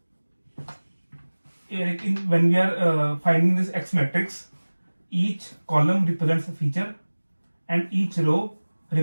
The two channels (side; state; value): both; inverted; correlation -1.00